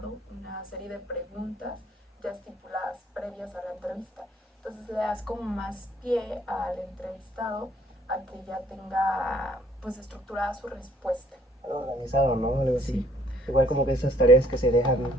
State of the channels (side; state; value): both; normal; correlation 0.62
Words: una serie de preguntas ya estipuladas previas a la entrevista. Entonces le das como más pie al entrevistado a que ya tenga pues estructurada su respuesta. Algo organizado, ¿no? Algo así. Sí. Igual como que esas tareas que se dejan